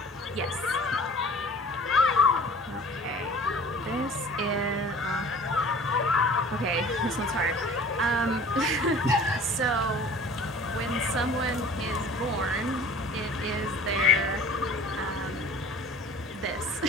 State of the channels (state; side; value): normal; both; correlation 0.45